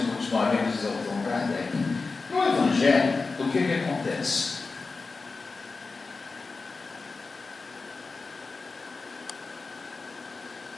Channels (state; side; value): quieter; right; 4.1 dB